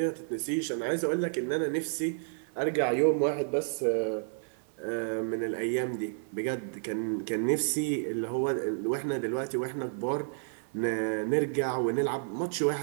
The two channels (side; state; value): left; silent; 57 dB below the other